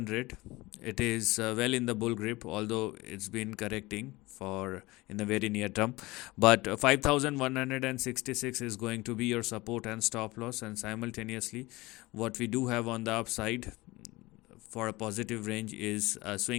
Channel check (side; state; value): right; quieter; 21.1 dB